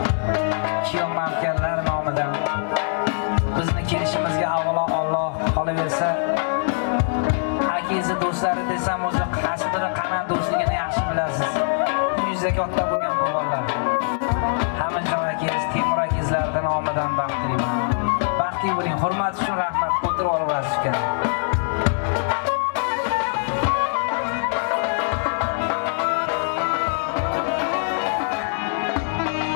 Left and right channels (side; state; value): right; silent; digital silence